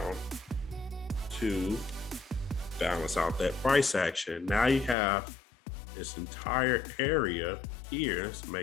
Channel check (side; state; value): right; drops out; at 5.0 s